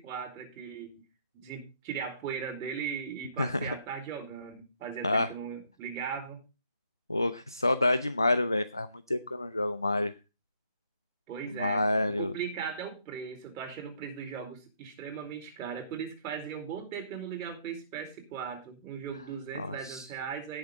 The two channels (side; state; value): both; inverted; correlation -0.69